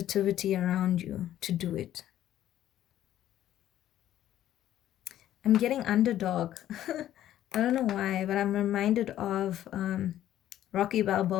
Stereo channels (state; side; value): quieter; right; 12.3 dB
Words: around you to do it. I'm getting underdog. I don't know why, but I'm reminded of Rocky